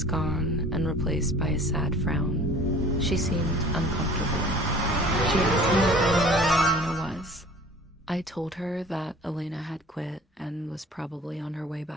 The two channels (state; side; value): normal; both; correlation 0.47